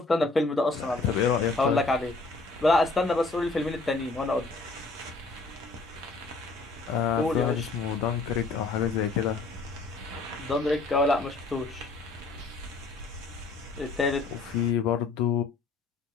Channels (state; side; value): quieter; right; 3.6 dB